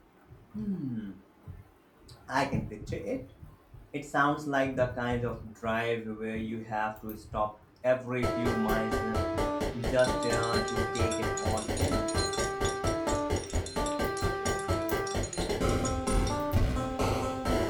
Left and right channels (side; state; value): both; identical; correlation 1.00